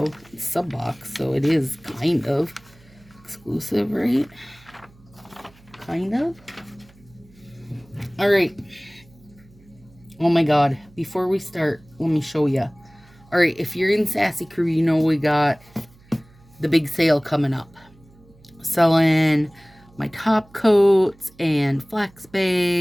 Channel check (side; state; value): right; noise; hum, 27 dB below the sound